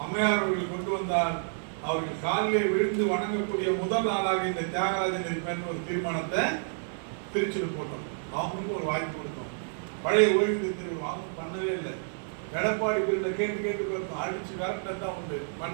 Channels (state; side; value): silent; left; digital silence